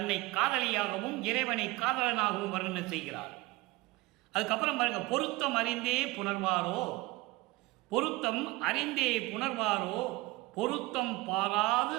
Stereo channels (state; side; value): quieter; left; 20.9 dB